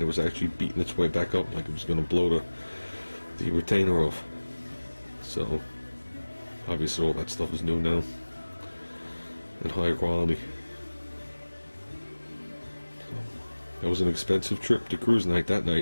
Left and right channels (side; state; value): both; inverted; correlation -1.00